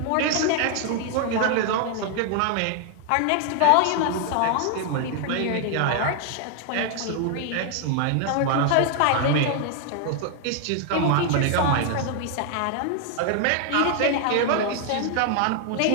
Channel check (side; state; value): both; different; correlation 0.00